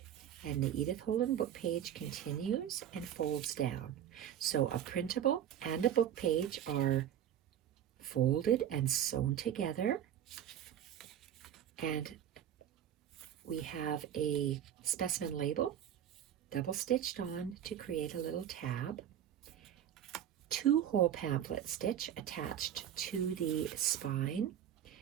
and the Edith Holden book page continues and folds down. So a printable and a book page are folded and sewn together, and we have a specimen label double stitched on to create a little tab. 2 whole pamphlet stitch attached to the spine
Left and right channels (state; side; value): quieter; left; 10.2 dB